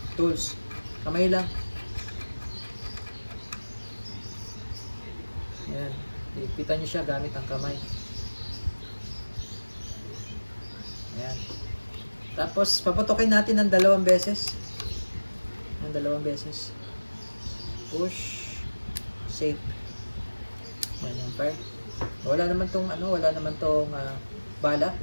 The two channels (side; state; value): both; inverted; correlation -1.00